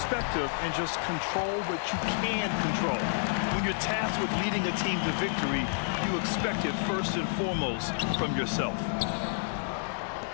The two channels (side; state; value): right; silent; digital silence